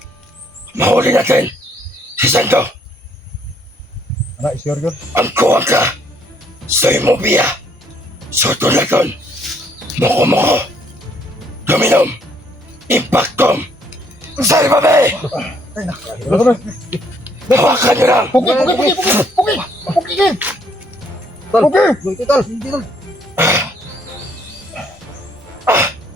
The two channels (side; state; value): both; normal; correlation 0.67